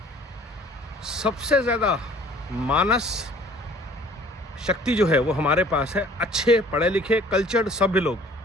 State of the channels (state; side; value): normal; both; correlation 0.52